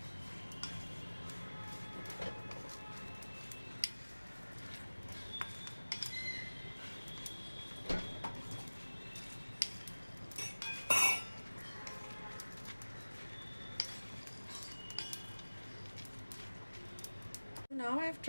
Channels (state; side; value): inverted; both; correlation -1.00